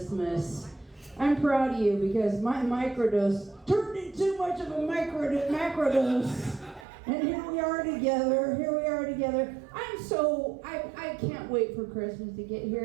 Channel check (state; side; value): drops out; left; at 6.9 s